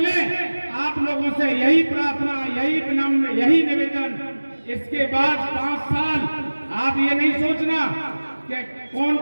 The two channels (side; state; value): both; inverted; correlation -1.00